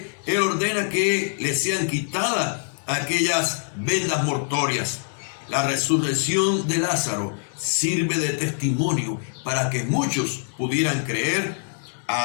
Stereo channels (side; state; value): right; silent; 63 dB below the other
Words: él ordena que le sean quitadas aquellas vendas mortuorias. La resurrección de Lázaro sirve de testimonio para que muchos pudieran creer